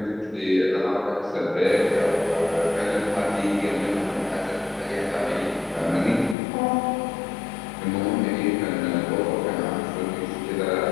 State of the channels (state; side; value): drops out; right; at 6.4 s